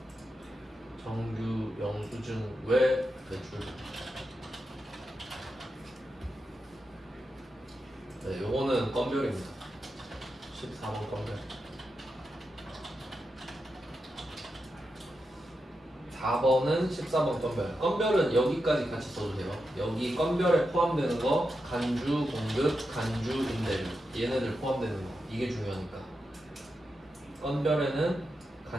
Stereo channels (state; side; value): normal; both; correlation 0.88